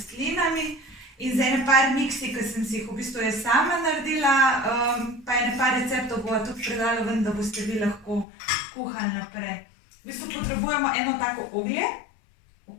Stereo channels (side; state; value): right; drops out; at 8.2 s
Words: in z ene par miksi, ki sem si jih v bistvu jaz sama naredila, pa ene par receptov bova tudi predala ven, da boste vi lahko kuhali naprej. V bistvu potrebujemo eno tako oglje,